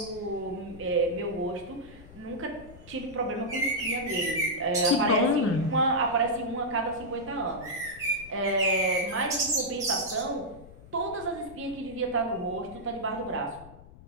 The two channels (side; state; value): left; noise; rumble, 19 dB below the sound